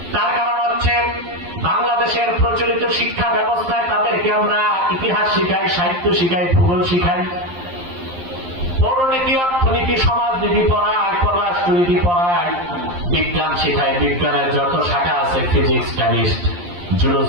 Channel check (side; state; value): left; late; 11 ms